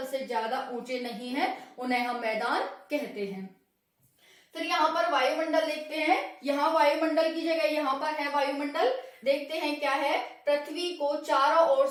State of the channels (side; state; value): both; identical; correlation 1.00